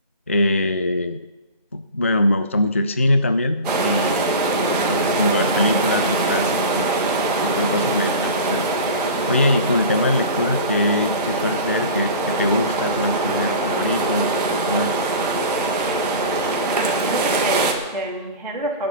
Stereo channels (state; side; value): inverted; both; correlation -0.34